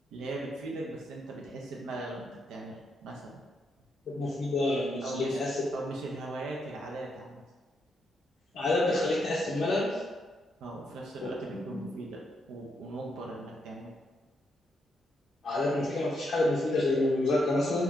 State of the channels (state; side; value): normal; both; correlation 0.79